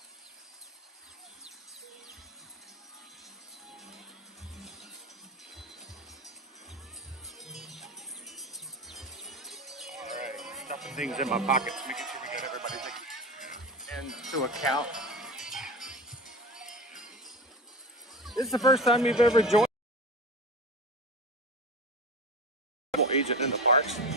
things in my pockets, making sure we get everybody taken into account. This is the first time you've ever joined a travel agent in the parks.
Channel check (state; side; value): normal; both; correlation 0.28